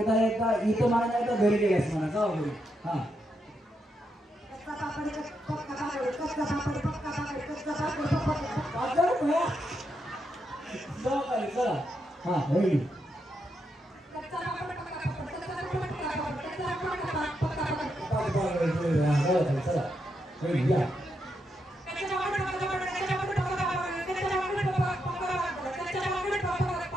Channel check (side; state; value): both; normal; correlation 0.82